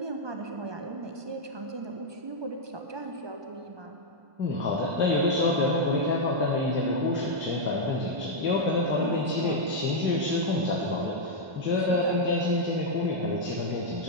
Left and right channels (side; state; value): left; late; 1.2 ms